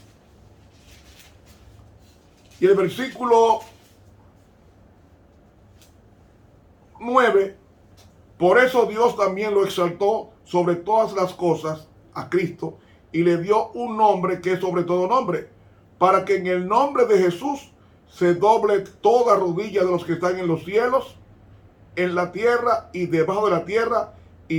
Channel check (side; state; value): both; identical; correlation 1.00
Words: y el versículo 9, por eso Dios también lo exaltó sobre todas las cosas a Cristo y le dio un nombre que es sobre todo nombre, para que en el nombre de Jesús se doble toda rodilla de los que están en los cielos, en la tierra y debajo de la tierra,